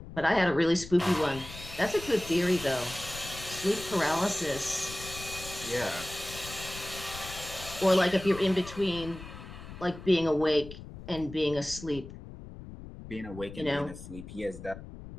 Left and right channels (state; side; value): noise; left; rumble, 13 dB below the sound